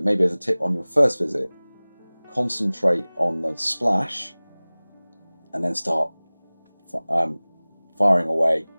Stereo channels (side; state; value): both; inverted; correlation -1.00